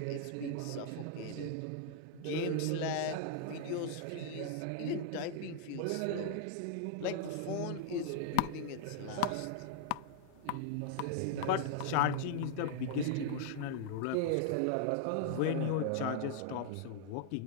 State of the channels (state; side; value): different; both; correlation -0.01